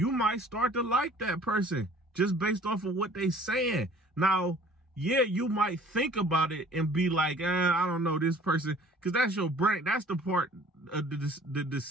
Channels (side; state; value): both; normal; correlation 0.52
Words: might start to like that person just based off of what they saying. Now, yeah, you might think about it and be like, I don't know this person, because that's your brain. That's the part of the